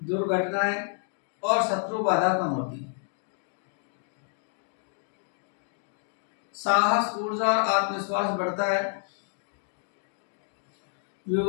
और शत्रु बाधा कम होती है। साहस, ऊर्जा और आत्मविश्वास बढ़ता है।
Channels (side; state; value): right; silent; digital silence